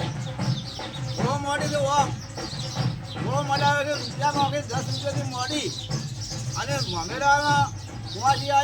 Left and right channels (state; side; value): identical; both; correlation 1.00